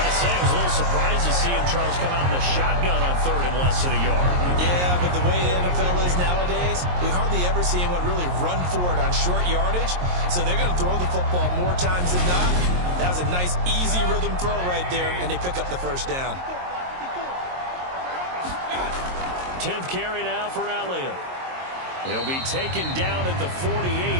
I was a little surprised to see him, Charles, come out in the shotgun on 3rd and less than a yard. Yeah, but the way the NFL is nowadays, we hardly ever see anyone really run for it on short yardage. So they're going to throw the football more times than not. That was a nice, easy rhythm throw right there, and they pick up the first down. 10th carry now for Elliott. He'll be taken down at the 48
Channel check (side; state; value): left; late; 22 ms